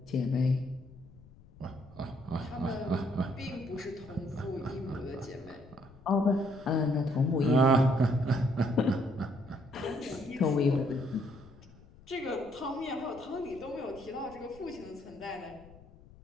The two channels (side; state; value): left; noise; rumble, 22 dB below the sound